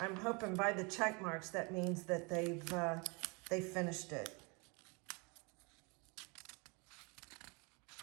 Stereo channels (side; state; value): left; quieter; 30.4 dB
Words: I'm hoping by the check marks that means that they've finished it.